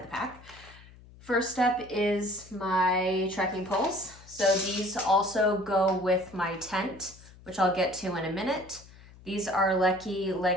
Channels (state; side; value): noise; left; hum, 22 dB below the sound